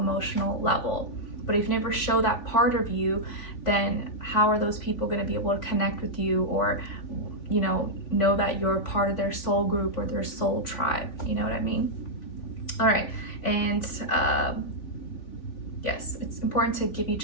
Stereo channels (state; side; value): late; right; 3.5 ms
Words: level. But if you never show that part of you, then how are those people going to be able to connect with you, or know that you're part of their soul group or their soul tribe? You know what I mean? All right. And yes, it's important to give